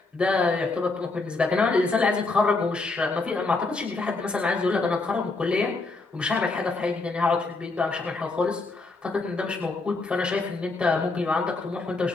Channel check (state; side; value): quieter; right; 3.6 dB